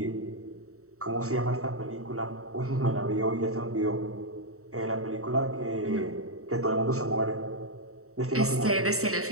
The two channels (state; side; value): late; left; 0.64 ms